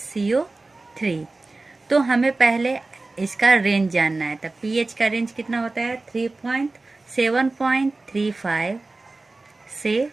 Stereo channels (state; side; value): quieter; left; 3.3 dB